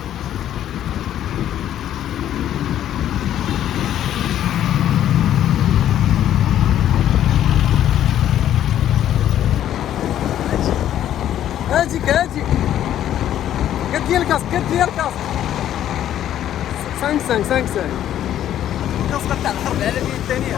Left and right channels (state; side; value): quieter; right; 11.3 dB